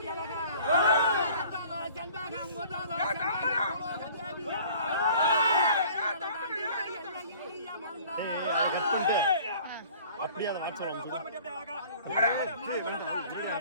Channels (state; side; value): inverted; both; correlation -0.50